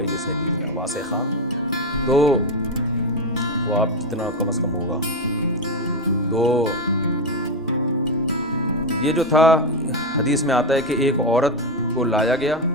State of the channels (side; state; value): both; normal; correlation 0.08